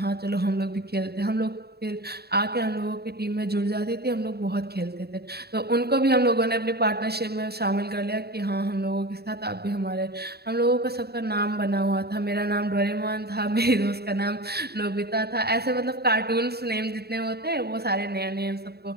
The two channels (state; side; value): late; left; 0.47 ms